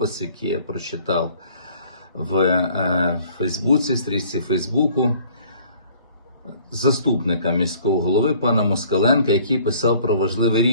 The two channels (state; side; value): inverted; both; correlation -0.55